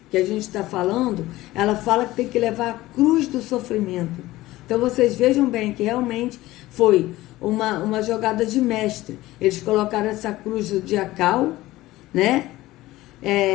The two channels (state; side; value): quieter; right; 17.3 dB